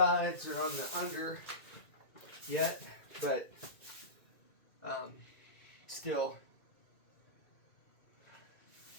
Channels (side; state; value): right; late; 2.4 ms